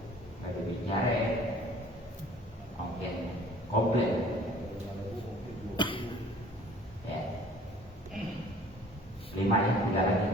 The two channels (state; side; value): normal; both; correlation 0.52